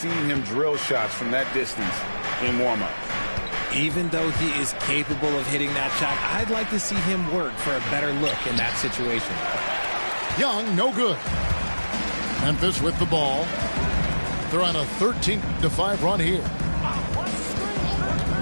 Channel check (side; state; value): both; inverted; correlation -1.00